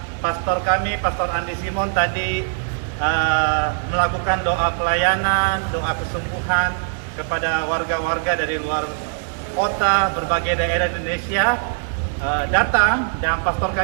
pastor kami, Pastor Andi Simon tadi melakukan doa pelayanan, doa kesembuhan kepada warga-warga dari luar kota, berbagai daerah Indonesia datang, dan pastor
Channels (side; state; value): left; silent; digital silence